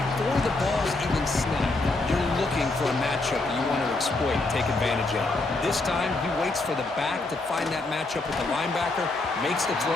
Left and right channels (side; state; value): right; quieter; 3.1 dB